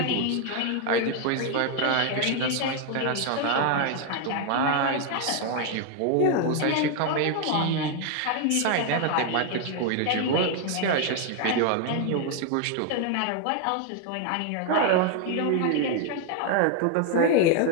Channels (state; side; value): different; both; correlation 0.00